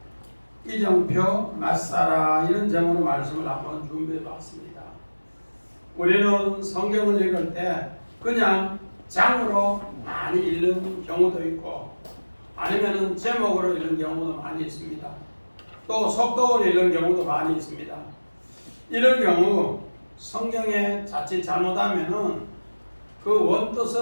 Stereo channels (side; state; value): both; inverted; correlation -1.00